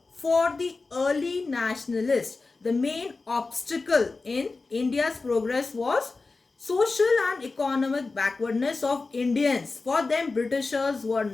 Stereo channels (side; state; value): right; quieter; 3.8 dB